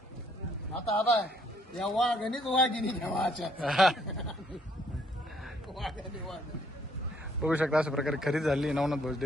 आता आता या वाघणीच वाघिणी ठेवायच्या. बघू शकता अशा प्रकारे खरेदी झाली नवनाथ भाऊ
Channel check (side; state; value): both; normal; correlation 0.67